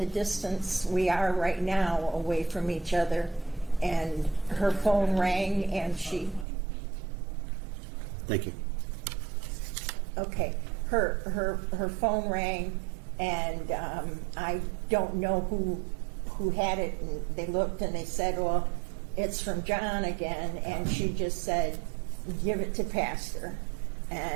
distance we are right now away from each other. And her phone rang, and she... Thank you. Okay. Her phone rang, and I don't know who had it, and they looked and they said, well, it's from John again, and she just said, give it to Pastor.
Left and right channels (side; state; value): left; drops out; at 6.5 s